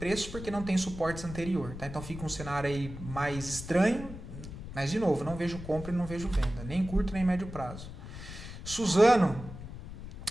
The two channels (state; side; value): noise; left; rumble, 11 dB below the sound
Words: porque não tem suportes anterior, tá? Então fica um cenário aí mais estranho, mas de novo, não vejo compra e não vejo venda, nem curto nem médio prazo. Suzano